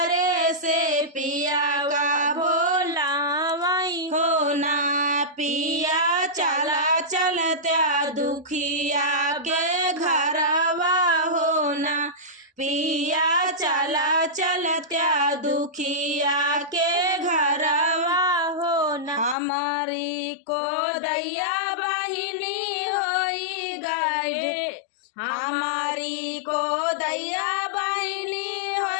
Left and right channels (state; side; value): drops out; right; at 19.4 s